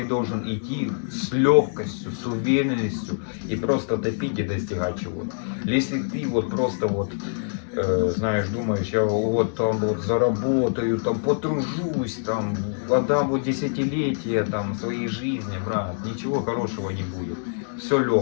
должен идти с легкостью, с уверенностью и просто топить и достигать чего-то. Если ты вот просто вот знаешь, думаешь, я вот там вот заработаю, там потружусь, там отдам вот десятилетия там своей жизни, брат, ничего хорошего не будет. Все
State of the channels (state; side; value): silent; right; digital silence